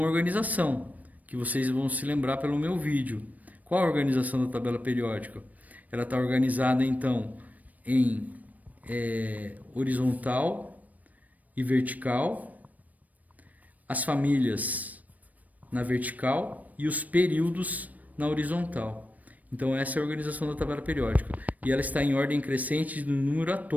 organização que vocês vão se lembrar pelo meu vídeo. Qual a organização da tabela periódica? Ela está organizada então em horizontal e vertical, as famílias na vertical e os períodos na horizontal. Então essa é a organização da tabela periódica. E ela está em ordem crescente de número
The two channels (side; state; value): left; late; 0.075 ms